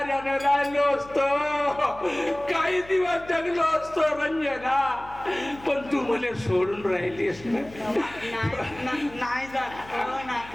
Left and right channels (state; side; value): noise; left; hum, 20 dB below the sound